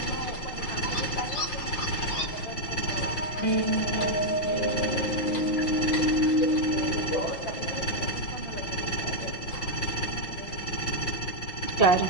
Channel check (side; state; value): right; late; 5.8 ms